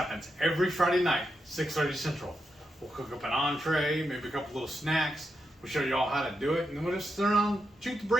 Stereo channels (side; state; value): both; normal; correlation 0.85